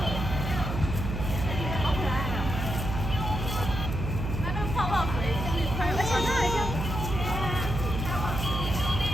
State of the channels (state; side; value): noise; right; hum, 3 dB below the sound